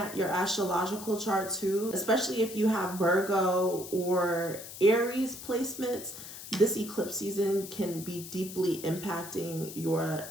your astrological chart too, especially if you have Virgo or Aries placements. This eclipse season can be deeply impacting your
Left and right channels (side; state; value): left; noise; hiss, 12 dB below the sound